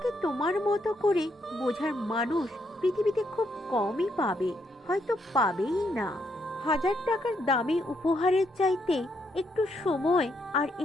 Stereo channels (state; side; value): normal; both; correlation 0.76